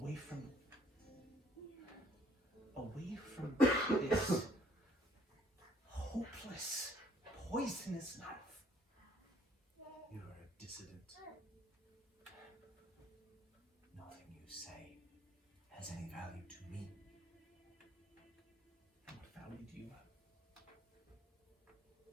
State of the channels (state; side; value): normal; both; correlation 0.63